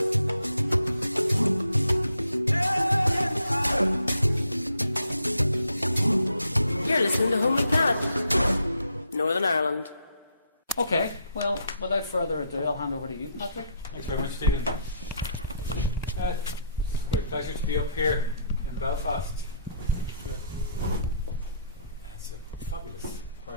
listening to Homely Planet, Northern Ireland. Okay, well, without further ado, I'll hand over to you, Patrick. Thanks very much, Stephen. It's a great pleasure to be up here in Belfast. It's a fabulous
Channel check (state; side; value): inverted; both; correlation -0.72